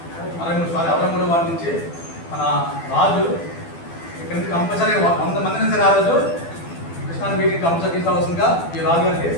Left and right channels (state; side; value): late; right; 12 ms